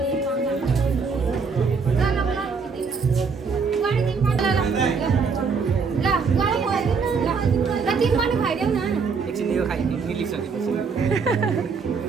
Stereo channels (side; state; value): left; quieter; 5.2 dB